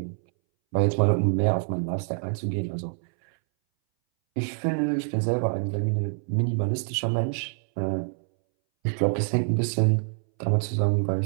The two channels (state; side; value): silent; left; 61 dB below the other